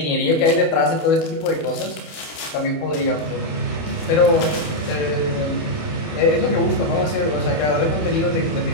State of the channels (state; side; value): late; right; 27 ms